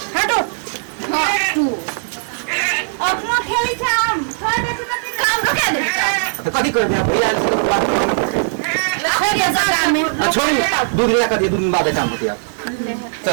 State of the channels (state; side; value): silent; left; digital silence